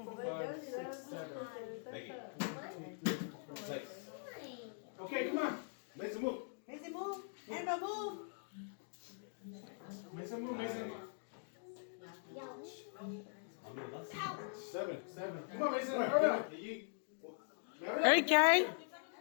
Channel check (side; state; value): right; silent; digital silence